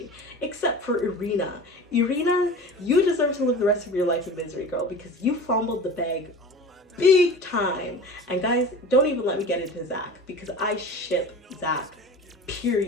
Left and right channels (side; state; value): both; normal; correlation 0.36